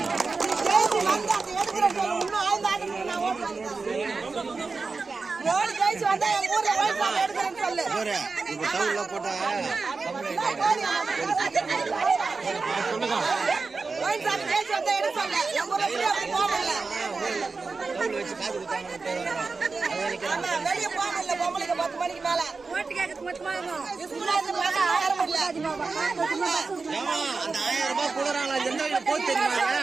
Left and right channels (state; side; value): quieter; left; 4.2 dB